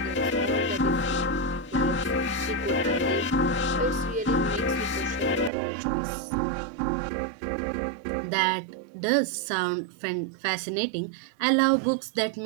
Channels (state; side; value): drops out; left; at 5.5 s